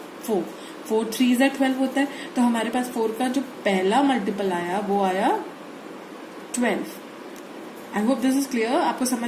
4. 4 3 12 होता है. तो हमारे पास 4 का जो पहला मल्टीपल आया वो आया 12. I hope this is clear. आपको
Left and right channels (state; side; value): identical; both; correlation 1.00